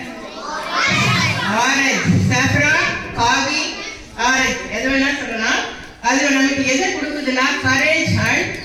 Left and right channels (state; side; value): identical; both; correlation 1.00